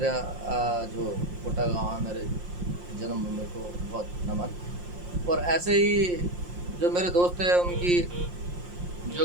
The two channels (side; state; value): left; late; 5.7 ms